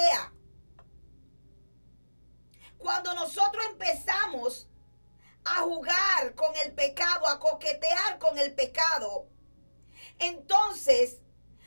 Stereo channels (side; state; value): both; inverted; correlation -1.00